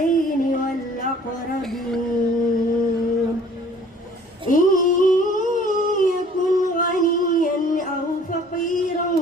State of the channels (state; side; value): normal; both; correlation 0.54